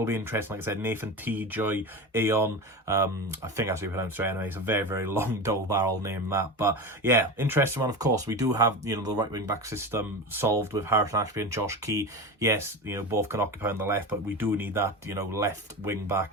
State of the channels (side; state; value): both; normal; correlation 0.25